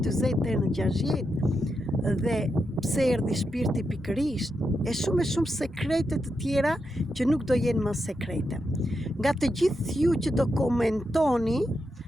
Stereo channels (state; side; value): normal; both; correlation 0.85